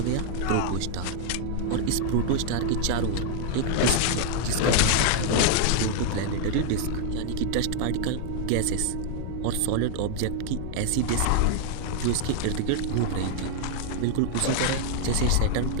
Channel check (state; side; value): different; both; correlation 0.00